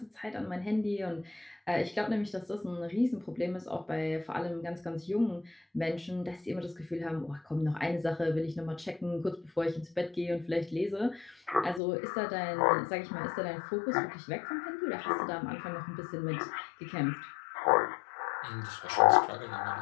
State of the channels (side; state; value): right; drops out; at 11.8 s